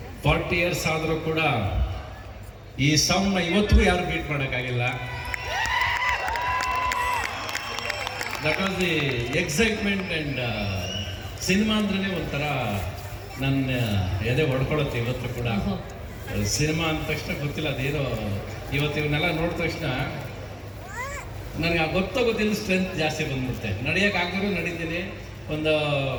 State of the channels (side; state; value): both; identical; correlation 1.00